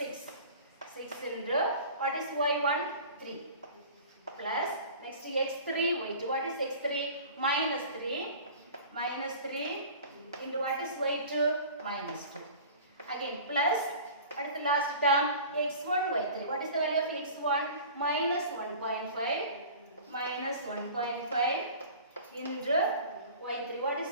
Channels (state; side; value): inverted; both; correlation -0.41